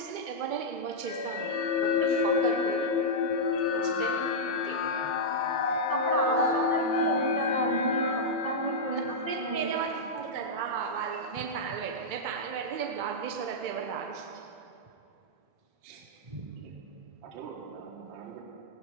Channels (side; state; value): left; late; 2.2 ms